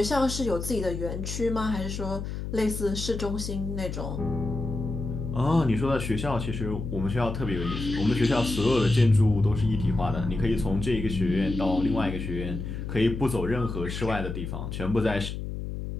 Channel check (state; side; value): noise; left; hum, 6 dB below the sound